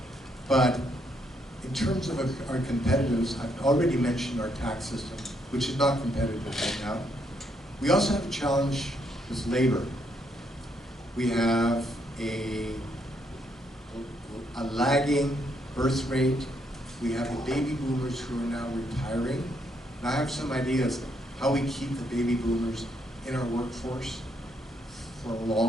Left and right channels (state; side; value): normal; both; correlation 0.74